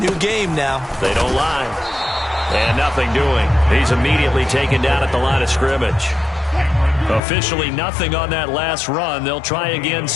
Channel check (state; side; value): drops out; right; at 7.2 s